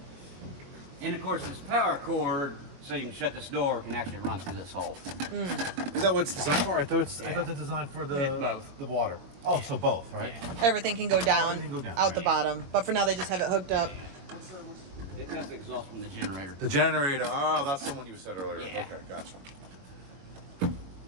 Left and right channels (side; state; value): left; late; 22 ms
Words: And of course, this power cord, so you can shut this door, can actually run through this hole. Is that what it's designed for? I thought it's designed for both. the water. Oh, so both, right? Everything can go down, Everything can go down, out the right. bottom. But for now, they just have it hooked up. That's the exhaust from the generator. The generator. Oh, that's the one you said earlier. Yeah. Okay, gotcha.